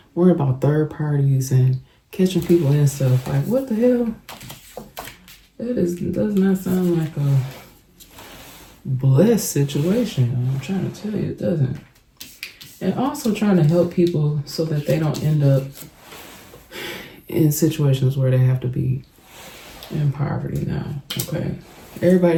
worrying about third parties and catching people and stuff, like what the hell? Does not sound like a blessed situation. I'm trying to tell you, it doesn't. And also trying to help people so that they don't end up in situations where they have to be in poverty now. Okay, everybody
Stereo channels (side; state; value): both; identical; correlation 1.00